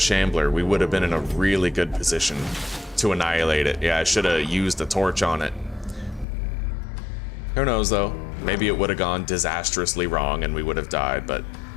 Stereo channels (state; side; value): drops out; right; at 6.2 s